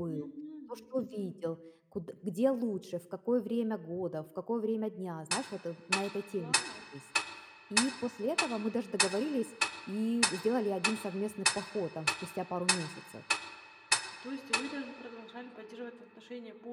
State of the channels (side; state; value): both; identical; correlation 1.00